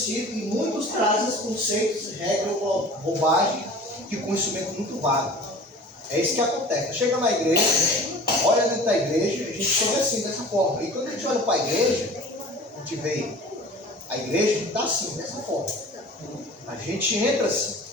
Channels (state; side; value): normal; both; correlation 0.42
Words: e muitos trazem conceitos, regras, bobagem, de conhecimento muito vago. É isso que acontece. Chega na igreja, olha dentro da igreja, a gente chega assim, dessa forma. E quando a gente olha para a igreja, a gente vê a igreja está assim, dessa forma. A gente entra assim,